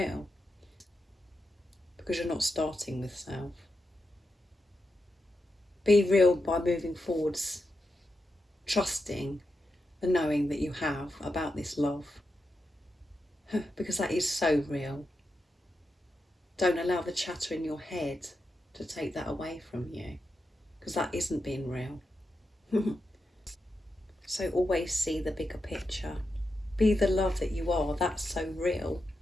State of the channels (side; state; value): both; normal; correlation 0.87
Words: because you're not starting with self. Be real by moving forwards, trusting the knowing that you have about this love, because that is so real. Don't allow the chatter in your head to take that away from you, because that isn't being real. So always see the bigger picture. Be the love that you are. That's so real.